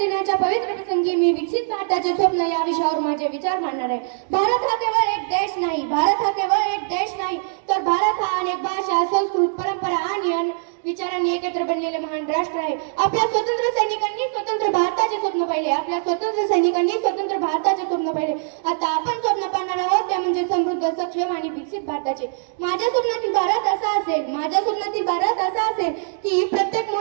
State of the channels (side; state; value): left; silent; digital silence